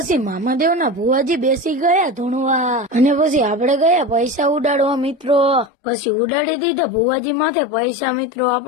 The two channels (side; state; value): right; drops out; at 5.7 s